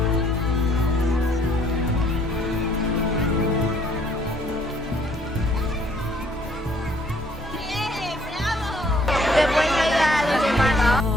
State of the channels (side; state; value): both; normal; correlation 0.62